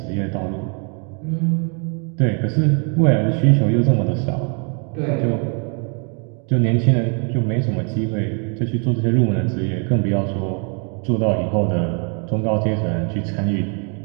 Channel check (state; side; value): quieter; left; 38.6 dB